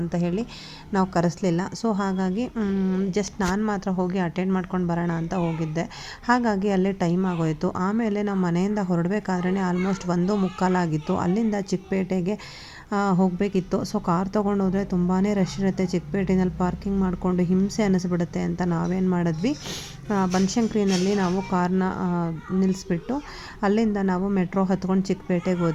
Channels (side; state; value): both; identical; correlation 1.00